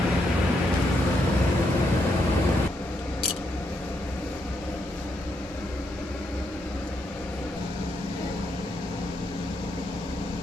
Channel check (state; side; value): normal; both; correlation 0.78